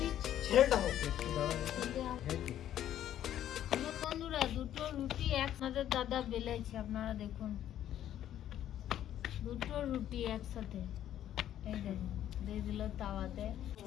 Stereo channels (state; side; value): quieter; right; 11.4 dB